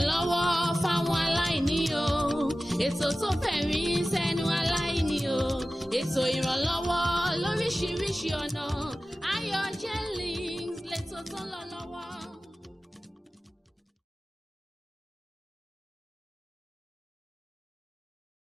fáwọn aláìní o ètò tó fẹ̀rí sẹ́nu aláìní o ètò ìrànlọ́wọ́ lóríṣiríṣi ọ̀nà Ayọ̀ Genlis lẹ́tọ̀ tó ń lọ lọ́wọ́.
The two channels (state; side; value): normal; both; correlation 0.96